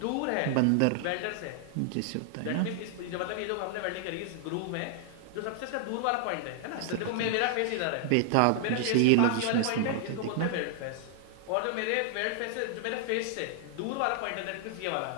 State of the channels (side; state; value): both; different; correlation 0.00